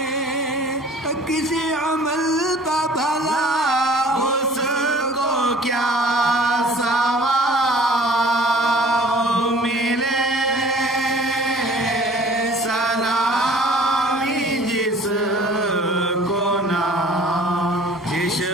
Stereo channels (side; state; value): both; normal; correlation 0.49